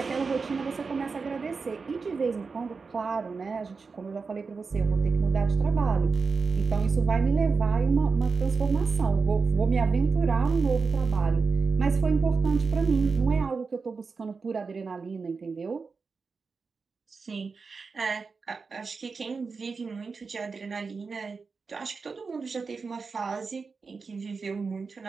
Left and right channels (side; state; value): left; quieter; 4.7 dB